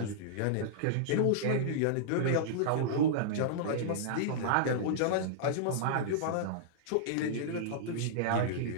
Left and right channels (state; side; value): different; both; correlation -0.02